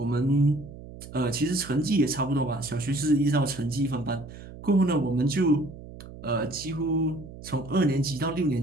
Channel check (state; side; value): noise; right; hum, 15 dB below the sound